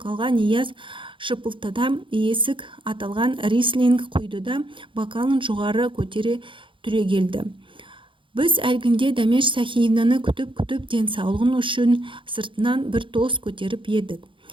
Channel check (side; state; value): left; late; 0.25 ms